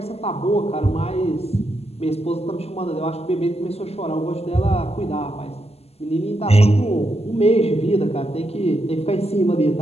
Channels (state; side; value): late; right; 0.29 ms